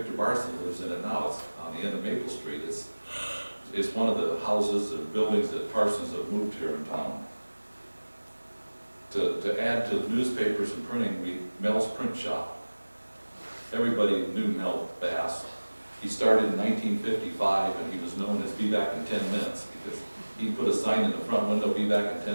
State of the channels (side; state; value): both; inverted; correlation -1.00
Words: Barson lives in it now. It's on the end of Maple Street. It's one of the houses and buildings that Parsons have moved here in town. To add to the newspapers and printing, Mel's Print Shop. Everybody knew Mel Bass. He started in 1955, and he was known as Be Back in 10 Minutes, because he put a sign in the front window, be back in